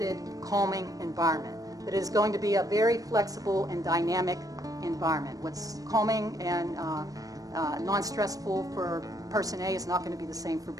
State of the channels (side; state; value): left; late; 0.17 ms